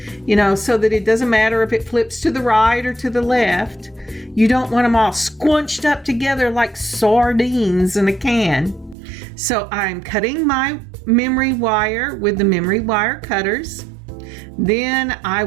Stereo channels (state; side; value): drops out; left; at 9.0 s